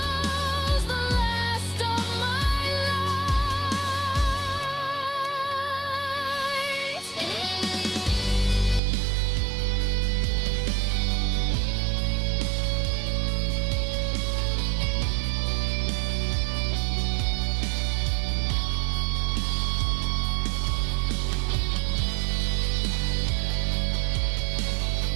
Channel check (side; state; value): left; drops out; at 8.8 s